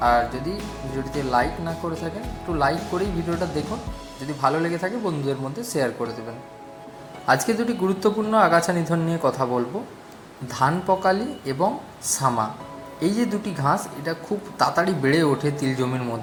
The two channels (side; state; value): both; identical; correlation 1.00